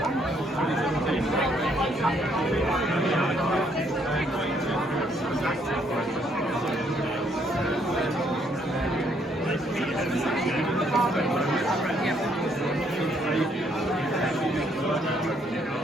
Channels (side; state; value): both; normal; correlation 0.69